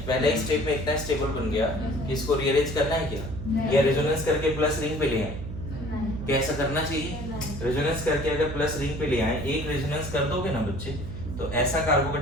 पहले ही स्टेप में इतना स्टेबल बन गया कि इसको रीअरेंज करना है क्या, या रेजोनेंस करके प्लस रिंग पे ले आए, क्या ऐसा करना चाहिए? रेजोनेंस करके अगर प्लस रिंग पे ले आए, एक रेजोनेंस कर दोगे ना बच्चे, तो ऐसा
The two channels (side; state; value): right; noise; hum, 8 dB below the sound